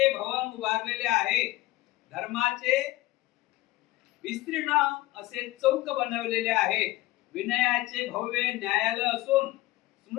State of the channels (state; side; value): quieter; right; 18.1 dB